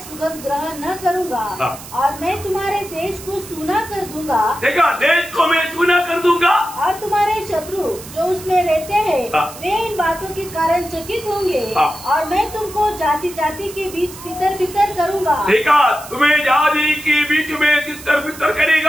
सुगंध ग्रहण न करूंगा और मैं तुम्हारे देश को सूना कर दूंगा। देखा, देश को मैं सूना कर दूंगा और तुम्हारे शत्रु जो उसमें रहते हैं वे इन बातों के कारण चकित होंगे और मैं तुमको जाति जाति के बीच तितर बितर करूंगा। देखा, तुम्हें जाति के बीच में तितर बितर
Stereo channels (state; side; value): noise; right; hiss, 15 dB below the sound